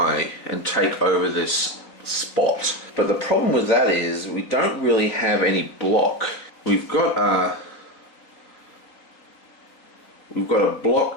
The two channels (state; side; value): late; right; 3.8 ms